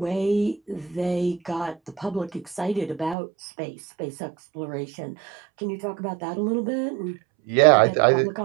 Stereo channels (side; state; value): left; drops out; at 3.2 s